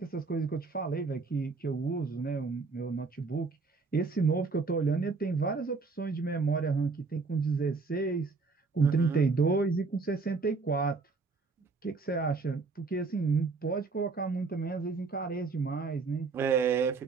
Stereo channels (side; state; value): left; quieter; 4.3 dB